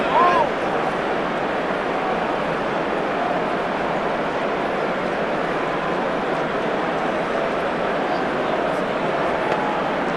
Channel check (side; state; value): left; noise; hum, 30 dB below the sound